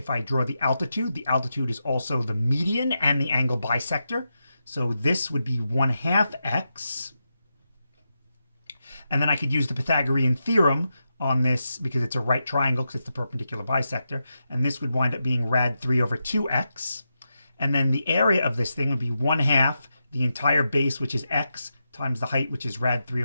I draw the altitude is also the median and the angle bisector. So this would be 1/2 x. And then I could use the Pythagorean theorem on this because it's a right triangle because it's the perpendicular bisector. And this would wind up being rad 3 over 2x. And then the area of this thing would be 1/2 the entire base, which is x, times the height, which is rad 3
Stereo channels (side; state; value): both; inverted; correlation -0.87